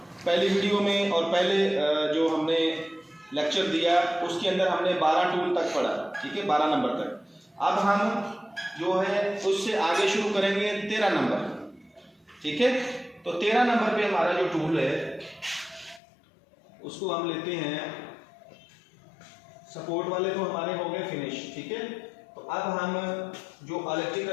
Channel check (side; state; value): right; drops out; at 16.0 s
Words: पहली वीडियो में और पहले जो हमने लेक्चर दिया उसके अंदर हमने 12 टूल तक पढ़ा, ठीक है, 12 नंबर तक। अब हम जो है उससे आगे शुरू करेंगे 13 नंबर, ठीक है। तो 13 नंबर पे हमारा जो टूल है उसको हम लेते हैं, सपोर्ट वाले तो हमारे हो गए फिनिश, ठीक है। तो अब हम जो